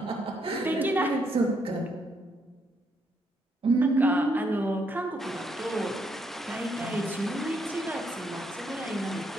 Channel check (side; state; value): both; normal; correlation 0.74